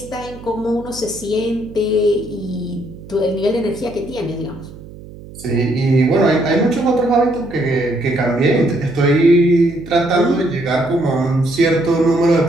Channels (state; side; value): noise; right; hum, 17 dB below the sound